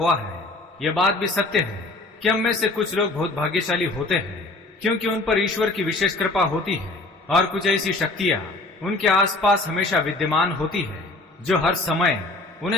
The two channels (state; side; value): quieter; right; 3.0 dB